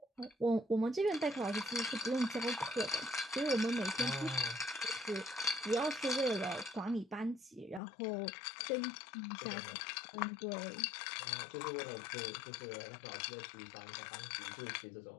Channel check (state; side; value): drops out; right; at 7.8 s